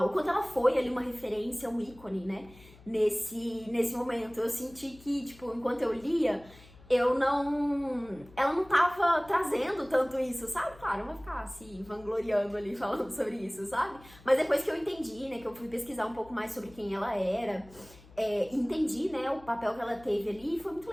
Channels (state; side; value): noise; left; hum, 23 dB below the sound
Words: ela foi ali uma referência, um ícone, né, nesse momento. Eu senti que, tipo, enquanto eu lia, ela não tava trazendo tanto isso, sabe? Claro, eu vou ficar assim, vangloriando ali, falando sobre isso, sabe? Mas depois que eu entendi, né, que eu fui pesquisar um pouco mais sobre quem ela era, entendi, né, o papel que ela teve ali, e foi muito